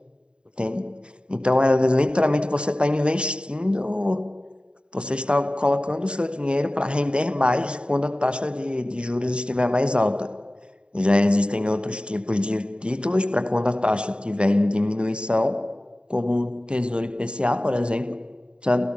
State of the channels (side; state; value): left; late; 0.051 ms